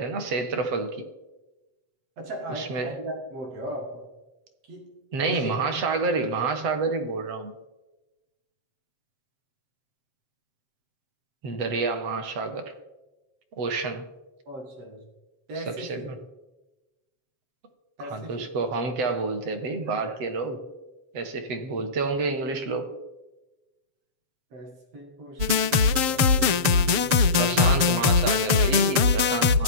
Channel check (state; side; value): late; left; 7.6 ms